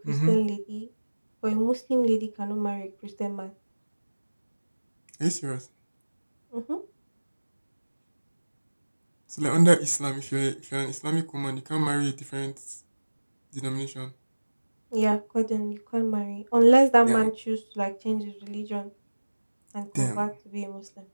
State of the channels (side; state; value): both; inverted; correlation -1.00